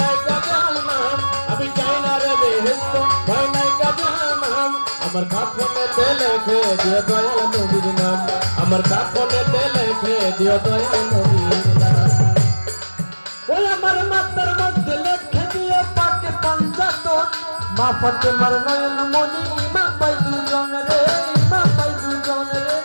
নাই তো জাহান্নাম আমি চাই না রে বেহেশত ভয় নাই তো জাহান্নাম আমার কাফনেতে লিখে দিও দয়াল নবীর নাম আমার কাফনেতে লিখে দিও দয়াল নবীর নাম ওই আমার মাথার মধ্যে লিখে দিও পাকে পাঞ্জাতন মা ফাতেমার নয়ন মনি ইমাম ভাই দুজন রে ইমাম ভাই দুজন রে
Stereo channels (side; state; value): both; inverted; correlation -1.00